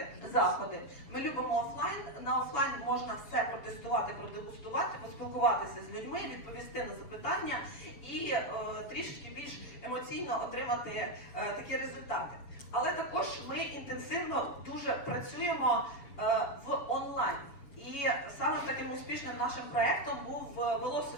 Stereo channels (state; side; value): late; right; 7.1 ms